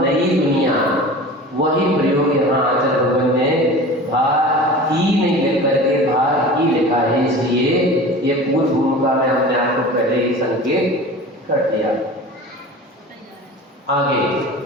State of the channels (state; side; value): normal; both; correlation 0.37